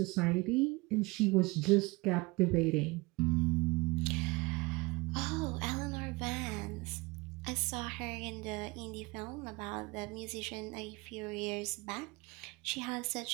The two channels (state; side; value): quieter; left; 24.3 dB